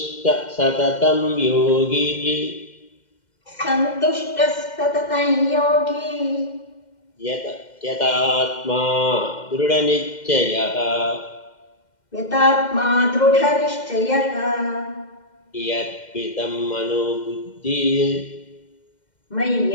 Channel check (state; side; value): late; right; 2.1 ms